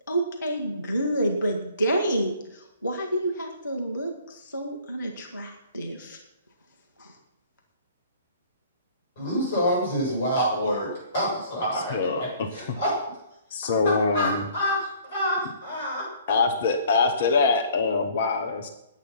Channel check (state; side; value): inverted; both; correlation -0.55